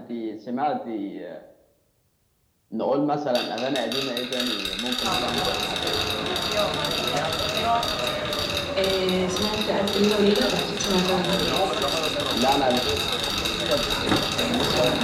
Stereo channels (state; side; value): identical; both; correlation 1.00